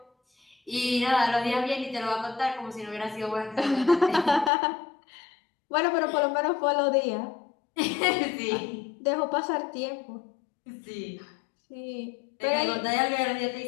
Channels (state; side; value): drops out; right; at 4.5 s